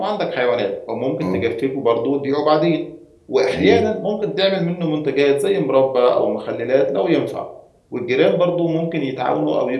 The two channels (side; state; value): both; identical; correlation 1.00